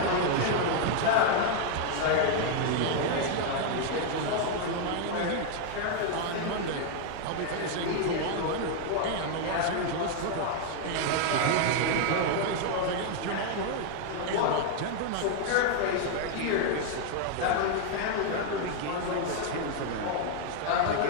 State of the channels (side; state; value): both; different; correlation 0.00